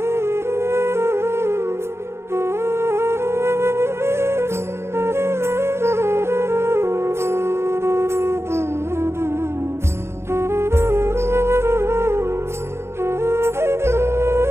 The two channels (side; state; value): left; late; 0.13 ms